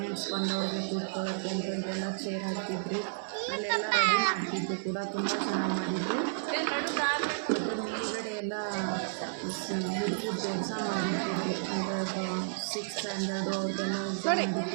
ಬಂದವ್ರಿಗೆ ಕೂತ್ಕೊಳ್ಳೋಕ್ಕೆ ಅಂತ ಇಲ್ಲೆಲ್ಲ ಚೇರ್ ಹಾಕ್ತಿದ್ರು. ಅಲ್ಲೆಲ್ಲ ರೆಡಿ ಮಾಡ್ತಿದ್ರು ಕೂಡ, ತುಂಬ ಚೆನ್ನಾಗಿ ಮಾಡಿದರು. ಮತ್ತು ಮತ್ತು ಮೇಲ್ಗಡೆ ಎಲ್ಲ ಹುಡುಗರದ್ದು ಎಕ್ಸಾಮ್ ನಡೀತಿತ್ತು, ಅಂದರೆ 6th ಸ್ಟ್ಯಾಂಡರ್ಡು ಅವ್ರದ್ದೆಲ್ಲ ಎಕ್ಸಾಮ್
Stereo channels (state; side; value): silent; left; 57 dB below the other